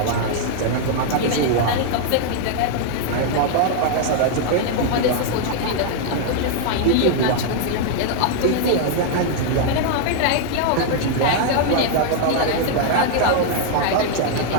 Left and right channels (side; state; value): both; different; correlation 0.00